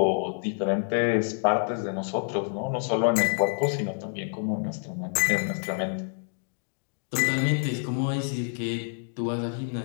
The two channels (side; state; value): right; silent; digital silence